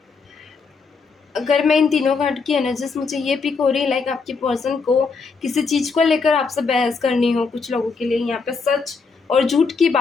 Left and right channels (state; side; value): quieter; right; 4.8 dB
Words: अगर मैं इन तीनों कार्ड की एनर्जीज, मुझे ये पिक हो रही है लाइक आपकी पर्सन को किसी चीज़ को लेकर आपसे बहस करनी हो। कुछ लोगों के लिए यहाँ पे सच और झूठ की